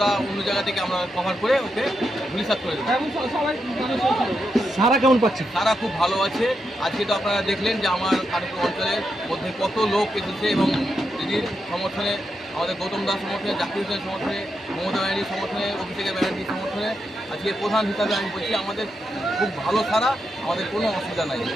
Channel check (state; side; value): normal; both; correlation 0.84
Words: অন্য জায়গা থেকে আমরা কভার করে ওকে ধূলিসাৎ করে দেবো। সারা কেমন পাচ্ছে? তারা খুব ভালো আছে। আজকে তো আপনারা দেখলেন যে আমার কানুপুর অঞ্চলের মধ্যে কত লোক এসেছে এবং দিদির সমর্থনে, আমাদের গৌতম দাস সমর্থনে, জাকির হোসেনের সমর্থনে, মমতা ব্যানার্জির সমর্থনে, অভিষেক ব্যানার্জির সমর্থনে আজকে প্রধান হিসাবে আমি বলছি আমাদের খুব ভালো সারা, আমাদের কোনো অসুবিধা নাই।